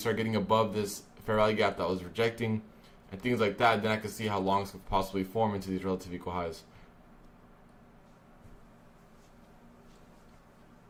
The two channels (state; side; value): identical; both; correlation 1.00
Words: getting above this fair value gap that was rejecting and things like that, then I can see how longs could possibly form into these relative equal highs.